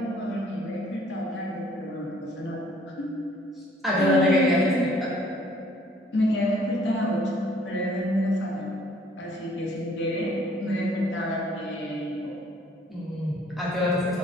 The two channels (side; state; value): both; normal; correlation 0.59